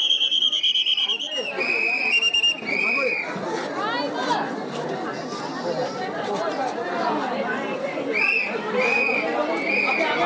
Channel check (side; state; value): both; identical; correlation 1.00